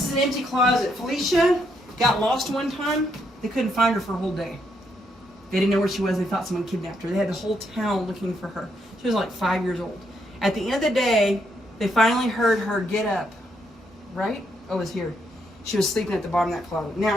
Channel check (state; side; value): normal; both; correlation 0.76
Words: is an empty closet. Felicia got lost one time. They couldn't find her for a whole day. They didn't know where she was. They thought someone kidnapped her. They had the whole town looking for her. She was like 5 years old. At the end of the day, they finally heard her get up. Right? Oh, it's here. She was sleeping at the bottom of that closet. Now,